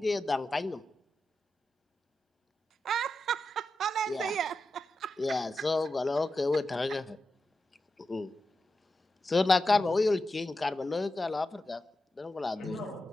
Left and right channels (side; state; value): both; normal; correlation 0.90